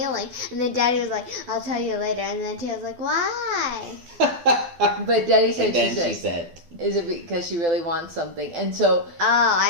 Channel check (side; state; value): left; late; 12 ms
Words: And then Daddy was like, I'll tell you later. And then Taya's like, why? But Daddy said, she said, is it because she really wants something? And so... Oh,